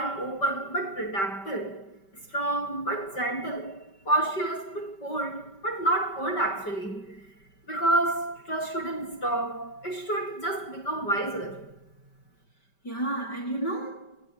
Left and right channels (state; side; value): late; right; 5.2 ms